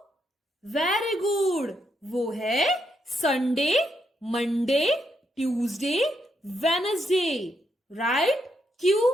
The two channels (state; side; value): normal; both; correlation 0.79